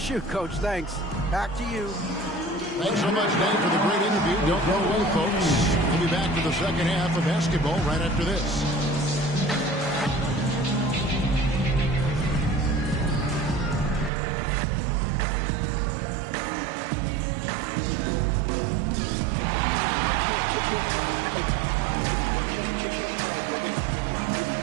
Coach. Thanks. Back to you. Thanks so much, Dave, for the great interview. Don't go away, folks. We'll be back to the second half of basketball right after this.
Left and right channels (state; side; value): drops out; left; at 14.1 s